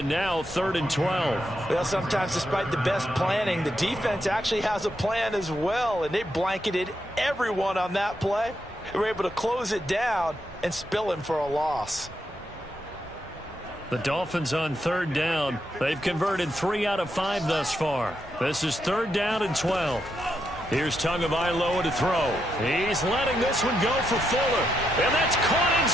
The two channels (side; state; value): both; normal; correlation 0.81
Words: now 3rd and 12. Well, sometimes despite the best planning, the defense actually has a plan as well, and they blanketed everyone on that play. They were able to close it down and spill him for a loss. The Dolphins on 3rd down. They've converted 3 out of 5 thus far. This is 3rd down and 12. Here's Tagovailoa to throw. He's letting this one go for Fuller. And that's caught